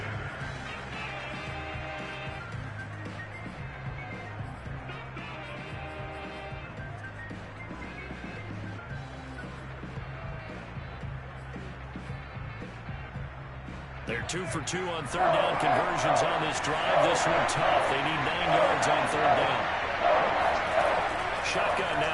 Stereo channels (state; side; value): identical; both; correlation 1.00